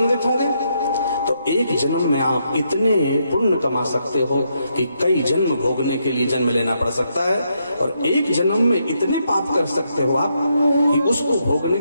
होंगे। तो एक जन्म में आप इतने पुण्य कमा सकते हो कि कई जन्म भोगने के लिए जन्म लेना पड़ सकता है, और एक जन्म में इतने पाप कर सकते हो आप कि उसको भोगने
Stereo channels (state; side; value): inverted; both; correlation -0.78